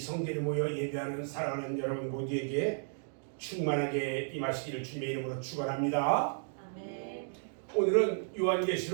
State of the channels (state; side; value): silent; left; digital silence